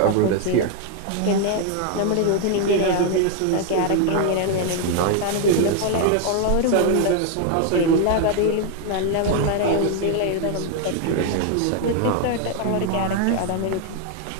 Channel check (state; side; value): different; both; correlation 0.00